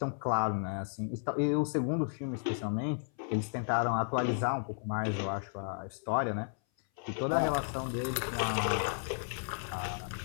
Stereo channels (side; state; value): right; silent; 55 dB below the other